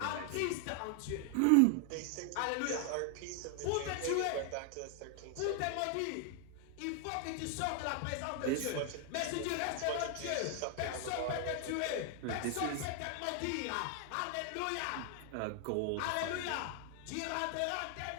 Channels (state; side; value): different; both; correlation 0.00